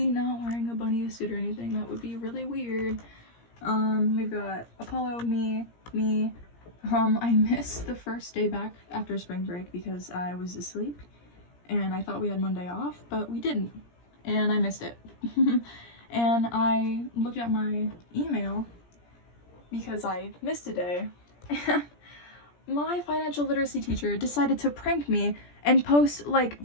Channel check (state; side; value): late; right; 17 ms